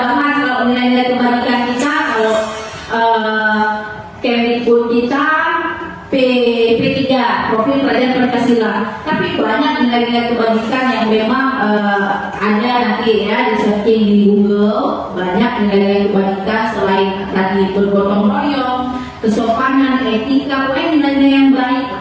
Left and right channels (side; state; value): both; identical; correlation 1.00